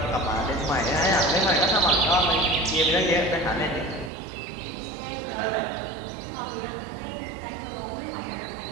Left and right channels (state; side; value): drops out; left; at 4.1 s